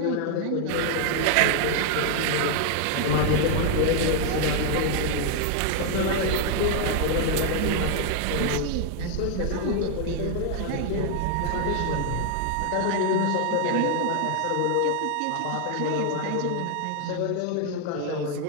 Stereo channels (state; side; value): different; both; correlation 0.00